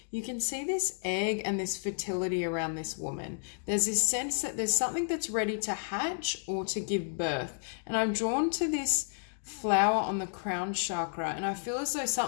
you can see this egg and this fertility around this woman. There's this sense that there's something that's ready to hatch or to give birth. And I'm drawn to this flower on the crown chakra, and I feel as though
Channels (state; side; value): silent; right; digital silence